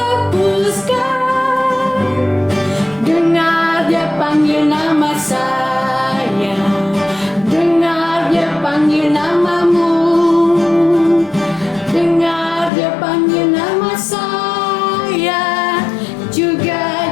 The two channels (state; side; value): drops out; right; at 12.7 s